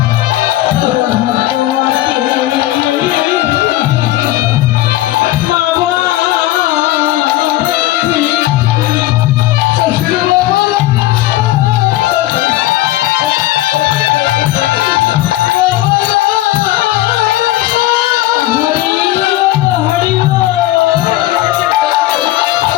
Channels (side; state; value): right; quieter; 15.8 dB